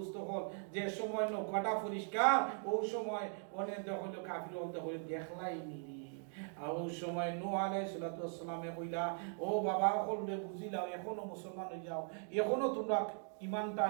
হল, যে সময় নৌকাটা পরিষ্কার ওই সময় অনেক হইল কাফির হলতে হইল দেখলাই নিরি। আর ওই সময় নূহ আলাইহিস সালাতু ওয়াস সালামে কইলা, ও বাবা হলরে বুঝিলাও, এখনো মুসলমান হয়ে যাও, এখনো তোমরা ইমানটা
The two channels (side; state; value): left; silent; 51 dB below the other